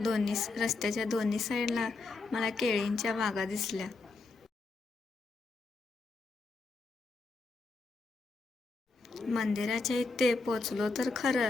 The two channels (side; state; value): right; quieter; 3.8 dB